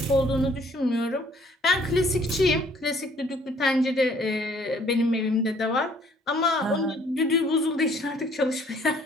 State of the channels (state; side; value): normal; both; correlation 0.60